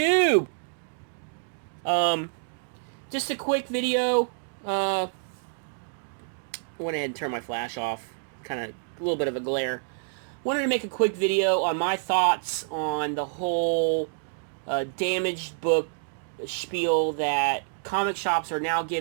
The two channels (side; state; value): left; silent; digital silence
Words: Um, just a quick video. Went ahead and turned my flash off. Kind of a little bit of a glare. Wanted to make a quick video on my thoughts on the whole damaged book spiel that comic shops are now